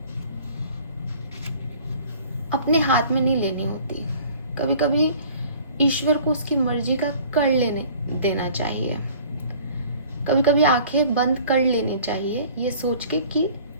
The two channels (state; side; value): inverted; both; correlation -0.49